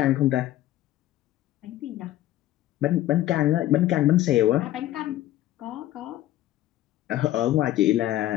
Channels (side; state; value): right; quieter; 14.3 dB